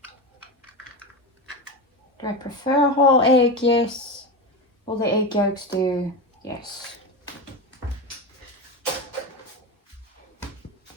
Do I prefer a whole egg? Yes. Will the egg yolks do? Yes.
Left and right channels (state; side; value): normal; both; correlation 0.19